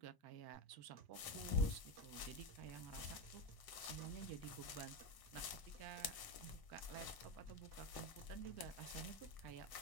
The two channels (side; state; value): right; late; 1.0 ms